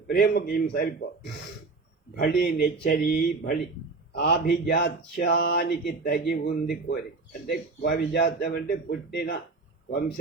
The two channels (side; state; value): left; quieter; 3.9 dB